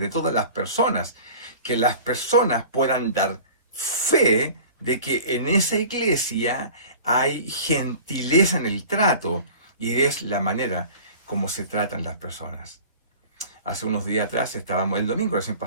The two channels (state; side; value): inverted; both; correlation -0.42